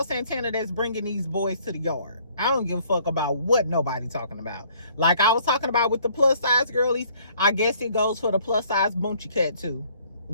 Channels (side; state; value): both; inverted; correlation -0.61